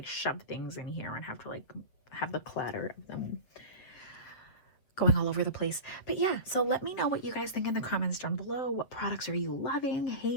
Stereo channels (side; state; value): right; late; 8.0 ms